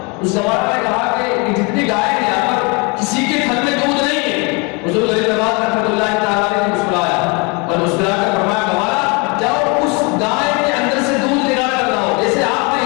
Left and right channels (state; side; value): quieter; right; 29.6 dB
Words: اس گوارا نے کہا کہ جتنی گائیں ہیں یہاں پر کسی کے تھن میں دودھ نہیں ہے. حضور غریب نواز رحمۃ اللہ تعالیٰ نے مسکرایا اور مسکرا کر فرمایا گوارا جاؤ اس گائے کے اندر سے دودھ نکال کر لاؤ. جیسے آپ نے